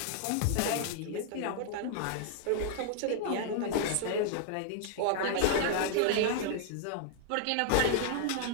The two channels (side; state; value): both; different; correlation -0.01